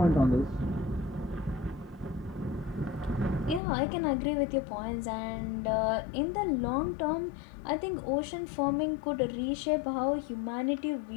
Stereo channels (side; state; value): right; drops out; at 3.6 s